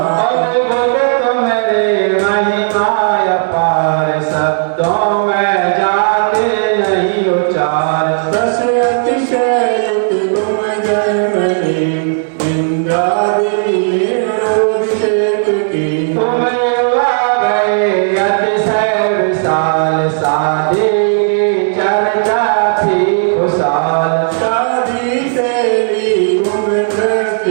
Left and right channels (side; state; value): left; silent; digital silence